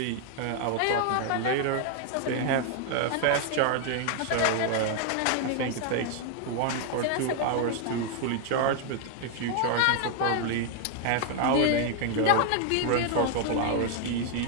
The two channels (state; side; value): different; both; correlation 0.00